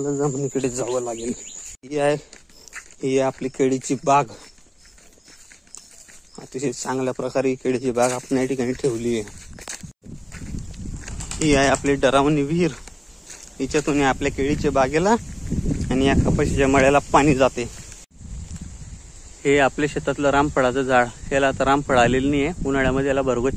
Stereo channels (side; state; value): both; identical; correlation 1.00